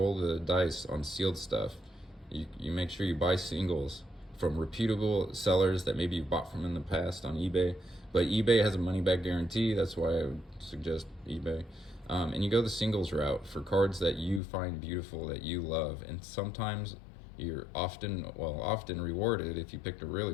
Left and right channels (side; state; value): right; drops out; at 14.4 s